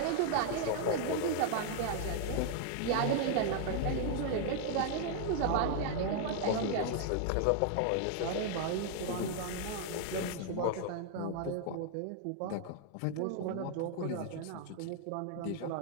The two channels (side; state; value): both; different; correlation 0.00